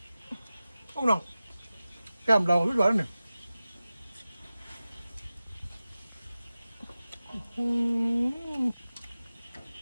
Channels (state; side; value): inverted; both; correlation -0.96